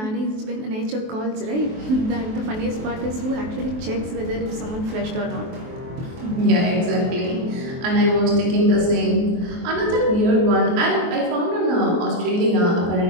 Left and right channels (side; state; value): left; late; 23 ms